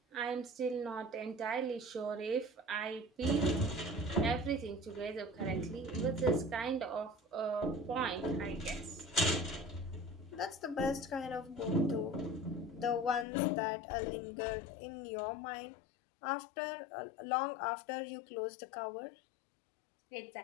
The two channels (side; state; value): right; drops out; at 13.2 s